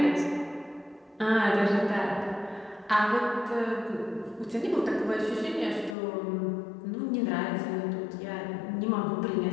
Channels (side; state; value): right; drops out; at 6.0 s